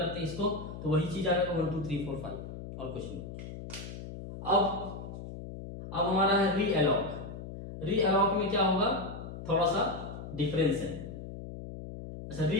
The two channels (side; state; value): left; noise; hum, 10 dB below the sound